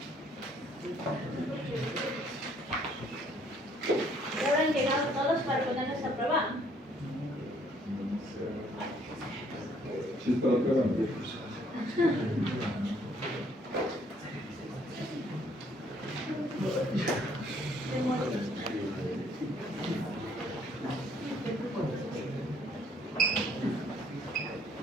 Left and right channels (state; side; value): normal; both; correlation 0.63